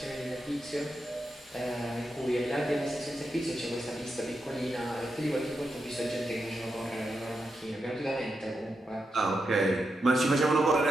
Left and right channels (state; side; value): normal; both; correlation 0.86